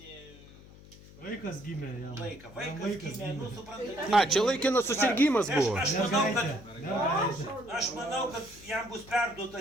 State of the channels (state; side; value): noise; left; hum, 20 dB below the sound